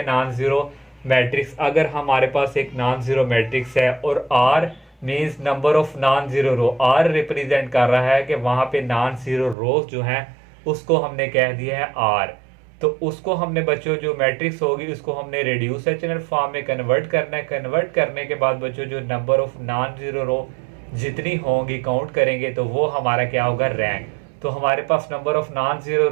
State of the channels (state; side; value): drops out; left; at 9.6 s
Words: non zero matrix. अगर हमारे पास एक नॉन जीरो मैट्रिक्स है और R means number of non zero row, R represent कर रहा है कि वहां पे नॉन जीरो रोज जो हैं उसको हमने कह दिया है आर। तो उसको हमने बच्चों जो मैट्रिक्स होगी उसको हमने रिड्यूस एचलन फॉर्म में कन्वर्ट करना है। कन्वर्ट करने के बाद बच्चों जो नंबर ऑफ नॉन जीरो रो जितनी होंगी काउंट करेंगे तो वो हमारा क्या होगा, रैंक। तो हमारे पास नंबर ऑफ नॉन जीरो